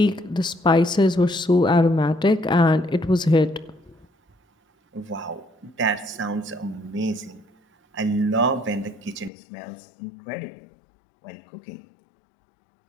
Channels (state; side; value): drops out; right; at 9.3 s